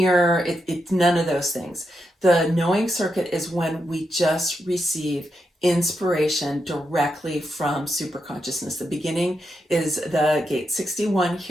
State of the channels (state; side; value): normal; both; correlation 0.84